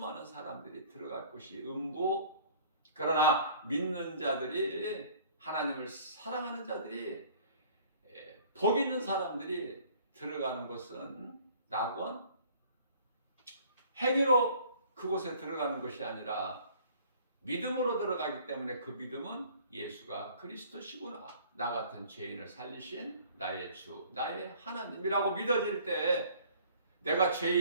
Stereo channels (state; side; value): inverted; both; correlation -0.53